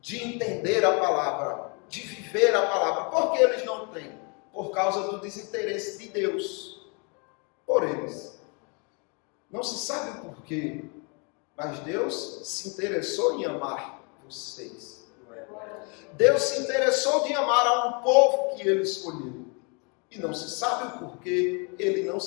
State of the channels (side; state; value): right; quieter; 34.6 dB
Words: entender a palavra, de viver a palavra. Por que eles não têm? Por causa do desinteresse de Deus por eles. Não se sabe o porquê, mas Deus se interessou em amar vocês. Deus se interessou de amar a um povo que Ele escolheu. E não se sabe o porquê Ele não